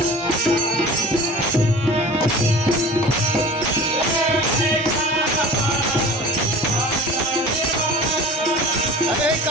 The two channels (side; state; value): both; normal; correlation 0.40